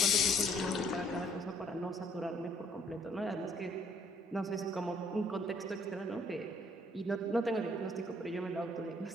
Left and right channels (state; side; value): normal; both; correlation 0.63